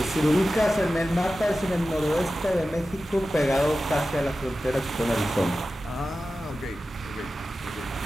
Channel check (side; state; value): both; normal; correlation 0.94